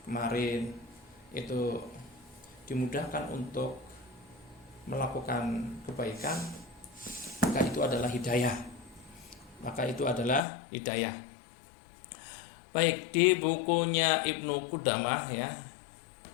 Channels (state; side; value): drops out; right; at 10.4 s